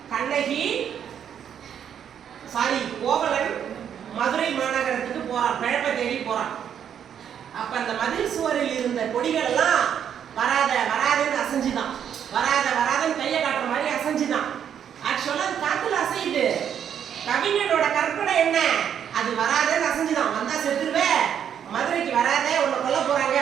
கண்ணகி கோவலன் மதுரை மாநகரத்துக்கு போறான், பிழப்பை தேடி போறான். அப்ப அந்த மதில் சுவரில் இருந்த கொடிகள் எல்லாம் வராத வராதுன்னு அசைஞ்சுதான், வராத வராதன்னு கையை காட்டுற மாதிரி அசைஞ்சுதான். ஆக்சுவலா அது காத்துல அசையுது, கவிஞனோட கற்பனை என்ன? அது வராதன்னு அசைஞ்சுதான். வந்தா செத்துருவே, மதுரைக்கு வராத, உன்னை கொல்ல போறாங்க,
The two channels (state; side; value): quieter; left; 8.8 dB